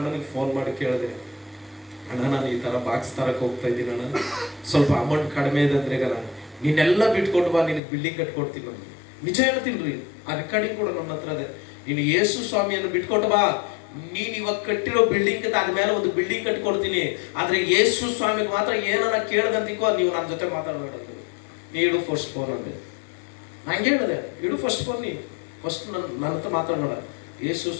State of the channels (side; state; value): right; drops out; at 7.8 s